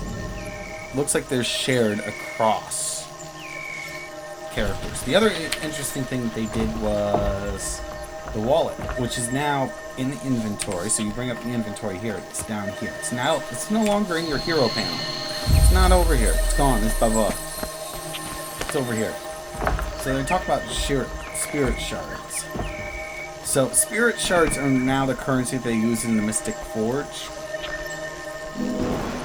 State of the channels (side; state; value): both; identical; correlation 1.00